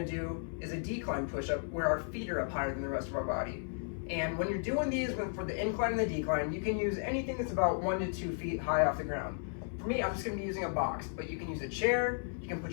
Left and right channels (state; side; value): silent; right; 55 dB below the other